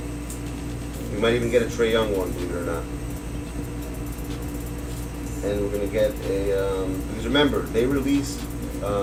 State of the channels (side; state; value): both; identical; correlation 1.00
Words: We might even get a Trae Young one, believe it or not. And we're gonna get a because remember they released